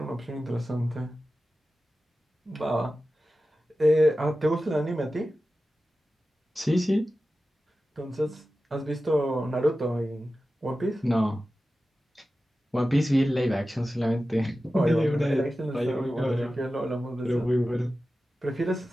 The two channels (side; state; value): both; normal; correlation 0.94